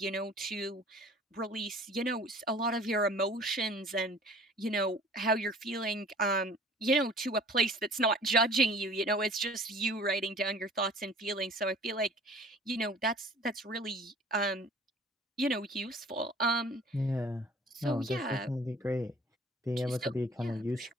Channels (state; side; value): normal; both; correlation 0.49